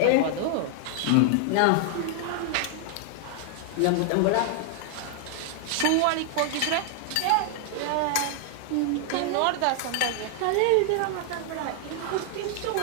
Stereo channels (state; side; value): different; both; correlation 0.00